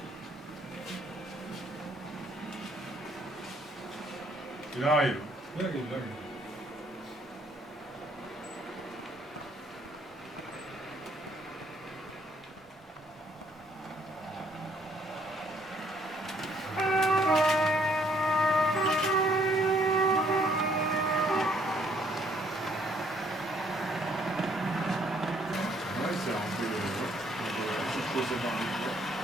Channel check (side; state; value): both; normal; correlation 0.66